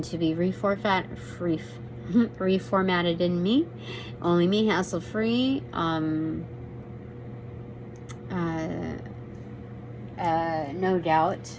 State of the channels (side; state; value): both; identical; correlation 1.00